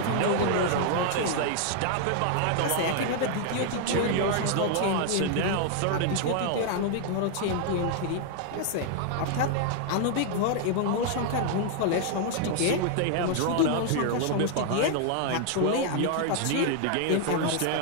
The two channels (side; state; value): both; different; correlation 0.00